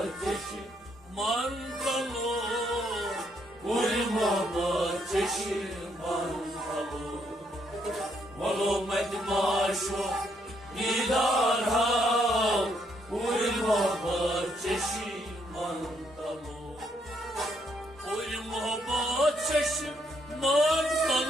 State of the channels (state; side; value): normal; both; correlation 0.73